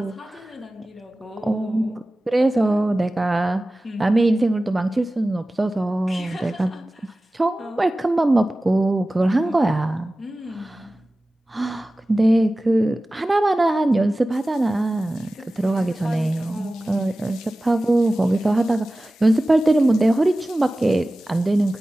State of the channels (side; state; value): both; normal; correlation 0.96